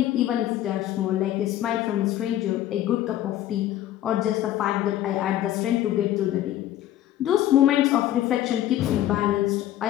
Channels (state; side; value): quieter; right; 12.9 dB